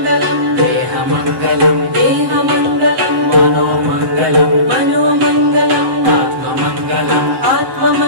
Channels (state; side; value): late; left; 7.9 ms